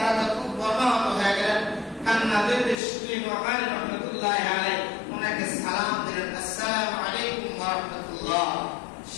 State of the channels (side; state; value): right; drops out; at 2.8 s